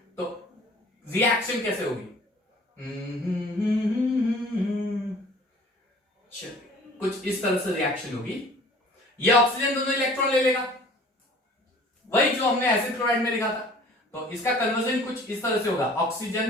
तो रिएक्शन कैसे होगी? कुछ इस तरह से रिएक्शन होगी, ये ऑक्सीजन दोनों इलेक्ट्रॉन ले लेगा, वही जो हमने एसिड क्लोराइड में लिखा था, तो इसका कन्वर्जन कुछ इस तरह से होगा,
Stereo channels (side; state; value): both; normal; correlation 0.50